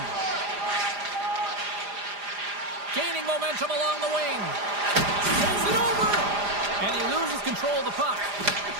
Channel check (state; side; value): late; left; 4.9 ms